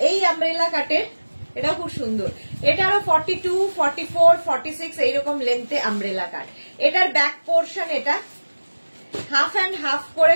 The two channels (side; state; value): both; inverted; correlation -1.00